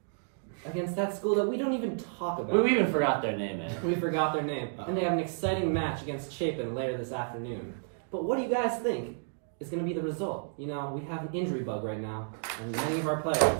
Against that school that we don't even talk about. We even forgot their name, man. We forgot their name. And they have an exciting match against Chapin later this afternoon. But what do you guys think is going to be the result? You know, we have an injury bug right now, and many of our players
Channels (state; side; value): silent; left; digital silence